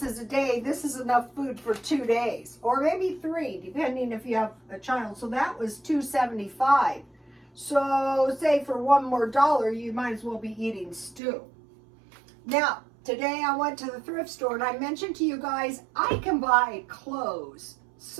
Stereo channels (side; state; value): left; drops out; at 11.2 s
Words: a day. This is enough food for 2 days, or maybe 3, depending if you have a child. So that was $2.75. So say for $1 more, you might as well be eating stew. Now, today I went to the thrift store, and I mentioned to you guys, I can buy clothes